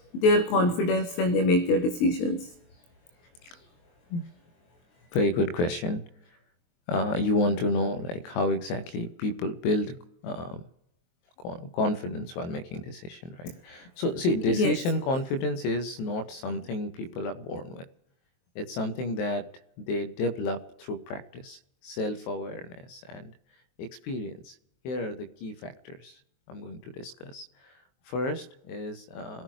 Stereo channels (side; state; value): right; late; 23 ms